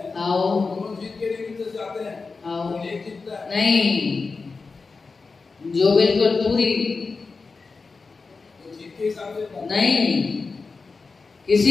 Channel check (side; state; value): right; quieter; 4.3 dB